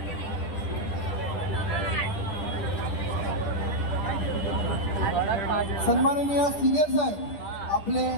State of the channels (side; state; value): right; late; 10 ms